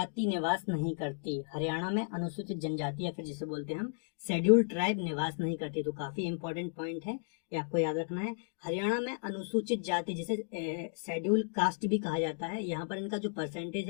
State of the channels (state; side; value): silent; right; digital silence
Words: निवास नहीं करती। हरियाणा में अनुसूचित जनजाति या फिर जिसे बोलते हैं हम शेड्यूल्ड ट्राइब निवास नहीं करती। तो काफी इंपॉर्टेंट पॉइंट है, ये आपको याद रखना है। हरियाणा में अनुसूचित जाति जिसे शेड्यूल्ड कास्ट भी कहा जाता है, यहाँ पर इनका जो परसेंटेज